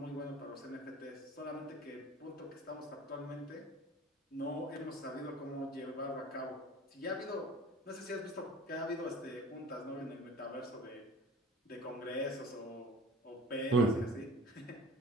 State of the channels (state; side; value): normal; both; correlation 0.42